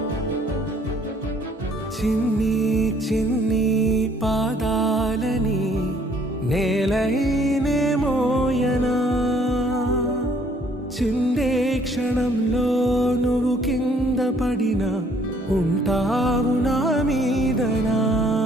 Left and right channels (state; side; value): normal; both; correlation 0.62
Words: చిన్ని చిన్ని పాదాలని నేలైనే మోయనా చిందే క్షణంలో నువ్వు కింద పడినా ఉంటావు నా మీదనా